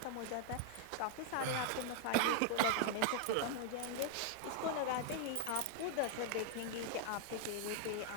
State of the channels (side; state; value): both; different; correlation 0.00